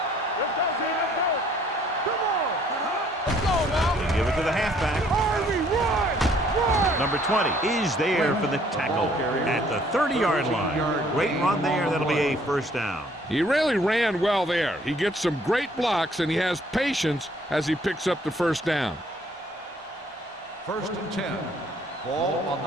go, team. Let's go. Come on. Let's go now. They give it to the halfback. Harvey, run. Run. Number 20 is there for the tackle at the 30-yard line. Great run there. That'll be a first down. He really ran well there. He gets some great blocks, and he has patience as he picks up the first down. First and 10. Ball on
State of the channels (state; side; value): normal; both; correlation 0.61